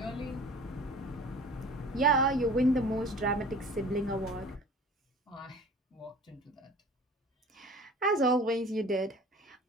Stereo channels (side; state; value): both; normal; correlation 0.43